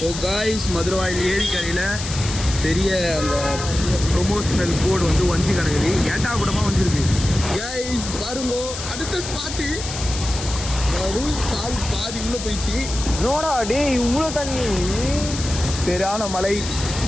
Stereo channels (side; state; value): left; noise; hiss, 8 dB below the sound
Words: கைஸ், மதுரவாயில் ஏரிக்கரையில் பெரிய அந்த ப்ரொமோஷனல் போர்டு வந்து வஞ்சி கிடக்குது, ஏட்டா கூடமாக வந்துருக்கு கைஸ். பாருங்க அடுத்த ஸ்பாட்டு, கால் பாதி உள்ள போயிடுச்சு. நோடா டே, இவ்வளோ தண்ணி, சரியான மலை.